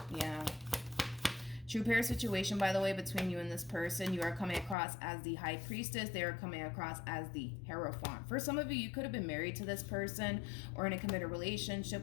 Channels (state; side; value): drops out; right; at 4.8 s